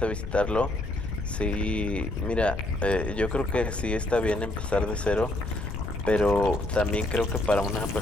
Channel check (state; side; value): noise; left; rumble, 7 dB below the sound